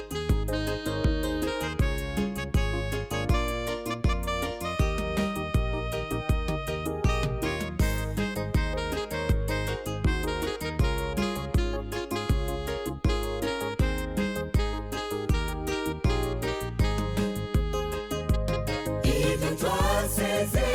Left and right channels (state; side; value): identical; both; correlation 1.00